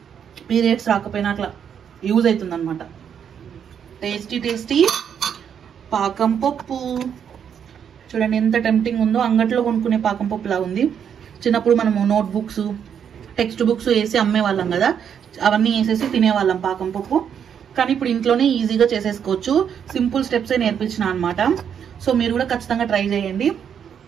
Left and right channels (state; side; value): quieter; left; 8.1 dB